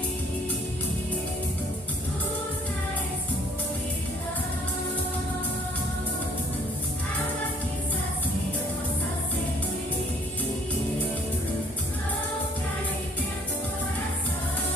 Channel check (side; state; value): both; normal; correlation 0.59